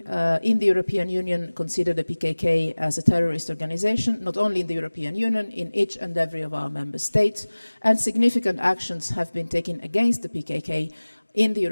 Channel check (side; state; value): both; inverted; correlation -1.00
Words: in the European Union consider the PKK as a terrorist organization, not only in the European Union, in each and every of our member states, and significant actions have been taken against the PKK in the